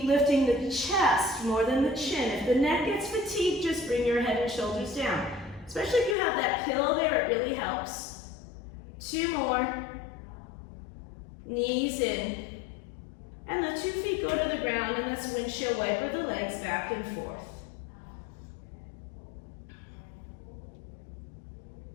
lifting the chest more than the chin. If the neck gets fatigued, just bring your head and shoulders down. Especially if you have that pillow there, it really helps. 2 more. Knees in. And the 2 feet go to the ground, and let's windshield wiper the legs back and forth.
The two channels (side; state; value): right; drops out; at 6.2 s